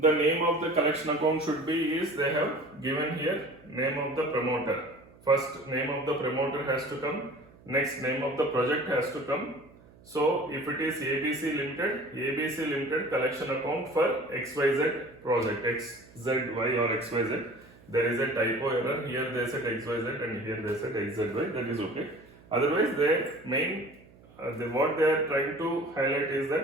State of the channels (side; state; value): right; noise; hum, 25 dB below the sound